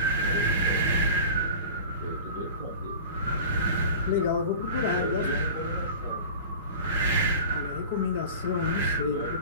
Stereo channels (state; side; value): inverted; both; correlation -0.37